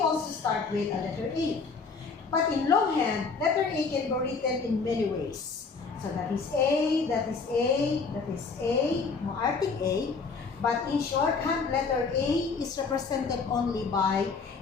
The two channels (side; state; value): right; quieter; 4.8 dB